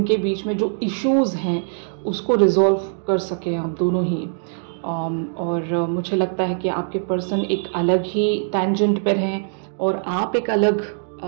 बीच में जो इश्यूज हैं उसको रिजॉल्व कर सकें आप दोनों ही। और मुझे लगता है कि आपके पर्सन एक अलग ही टेंजेंट पर हैं और आप एक अलग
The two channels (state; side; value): silent; left; digital silence